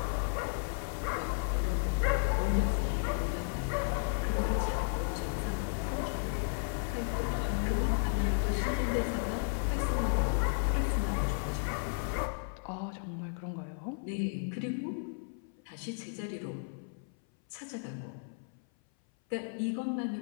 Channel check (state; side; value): silent; right; 55 dB below the other